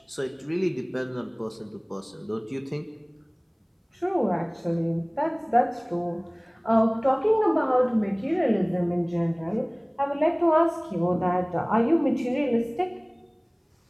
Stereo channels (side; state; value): both; identical; correlation 1.00